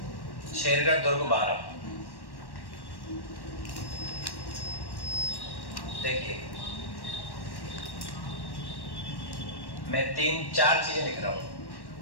शेरगढ़ दुर्ग 12, देखिए मैं 3-4 चीजें लिख रहा हूं,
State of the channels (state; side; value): late; right; 1.1 ms